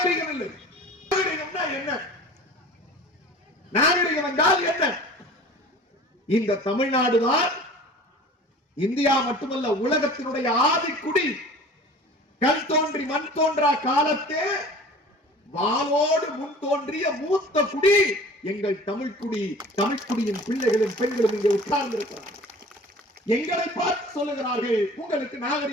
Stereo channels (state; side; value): normal; both; correlation 0.43